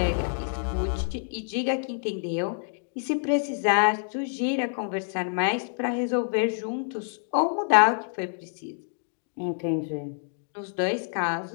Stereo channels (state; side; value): silent; right; digital silence